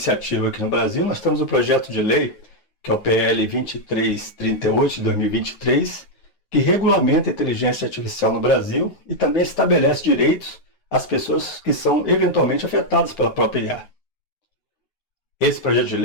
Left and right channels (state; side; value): late; right; 9.4 ms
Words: aqui no Brasil, nós temos o projeto de lei, que é o PL 2338 de 2023, que regulamenta a inteligência artificial no Brasil e também estabelece direitos às pessoas que são eventualmente afetadas pela própria IA. Esse projeto de